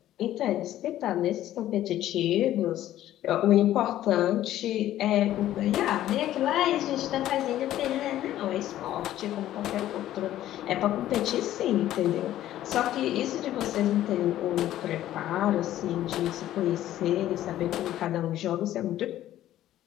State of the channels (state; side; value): quieter; right; 13.2 dB